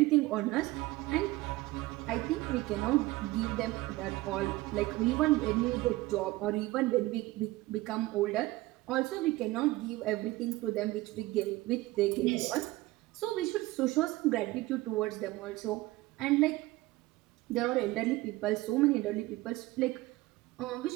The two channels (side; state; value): left; quieter; 19.1 dB